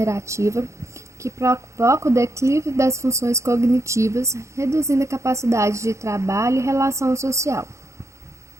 que provoca o declínio das funções cognitivas, reduzindo a capacidade de trabalho e relação social.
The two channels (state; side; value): late; left; 0.14 ms